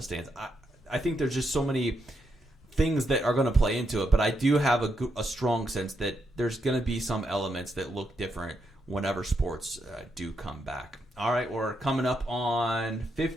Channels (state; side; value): normal; both; correlation 0.81